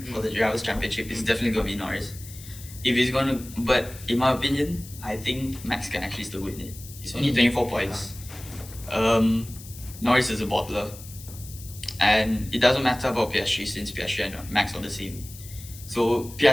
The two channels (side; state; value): left; noise; hiss, 16 dB below the sound